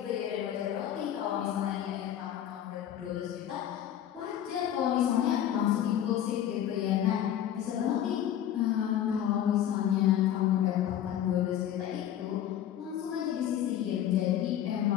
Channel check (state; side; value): quieter; right; 10.8 dB